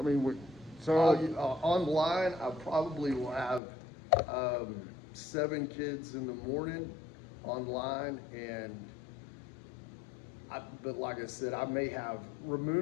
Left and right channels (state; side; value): drops out; right; at 3.6 s